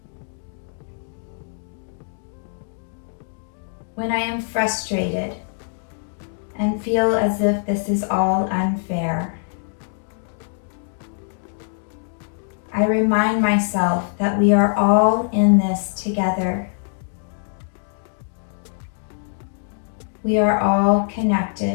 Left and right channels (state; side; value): silent; right; 63 dB below the other